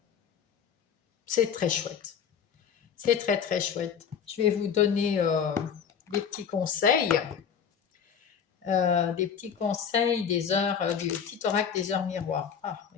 c'est très chouette. C'est très très chouette. Je vais vous donner des petits conseils. Des petits conseils des heures, du petit oracle des heures miroirs. Ah,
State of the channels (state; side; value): quieter; right; 7.4 dB